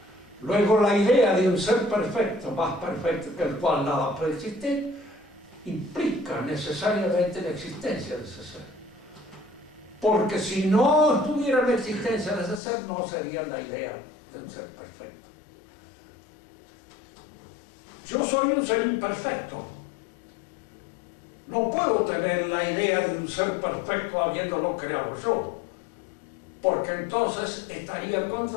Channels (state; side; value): drops out; right; at 12.6 s